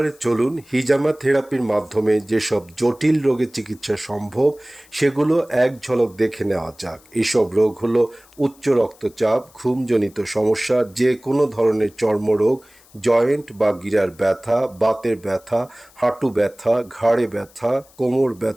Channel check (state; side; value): noise; left; hiss, 28 dB below the sound